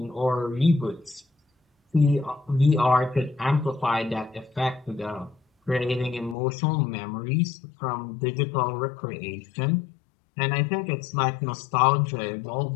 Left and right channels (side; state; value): right; drops out; at 6.4 s